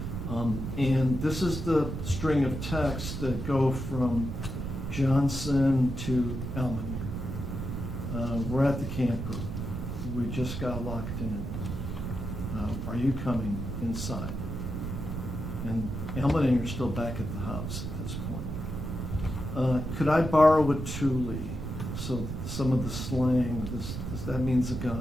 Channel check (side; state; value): right; noise; rumble, 5 dB below the sound